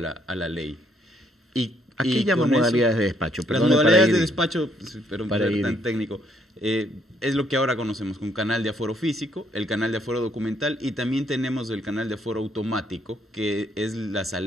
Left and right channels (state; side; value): normal; both; correlation 0.69